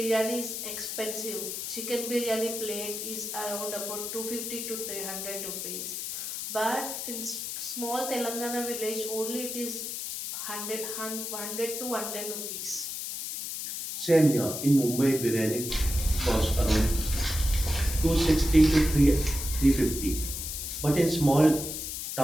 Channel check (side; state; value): left; noise; hiss, 5 dB below the sound